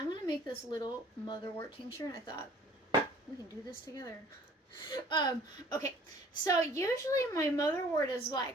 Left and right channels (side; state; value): both; normal; correlation 0.53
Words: going to make this little motherwort tincture, and I thought we can do this together. Okay, so usually my motherwort is like